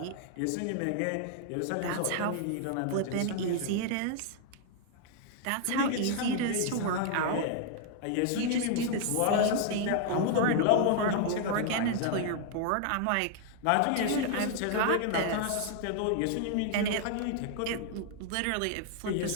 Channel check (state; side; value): different; both; correlation 0.00